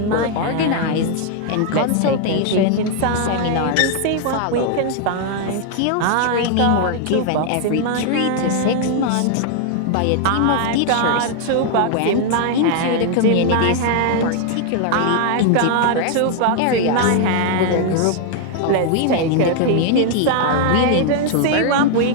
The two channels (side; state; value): both; different; correlation 0.00